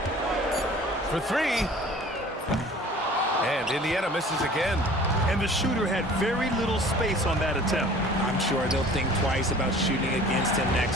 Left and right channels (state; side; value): normal; both; correlation 0.48